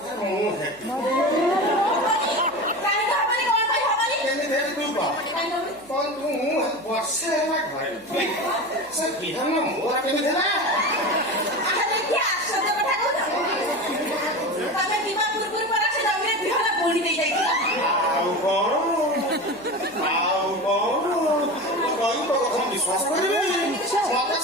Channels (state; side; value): noise; right; hum, 29 dB below the sound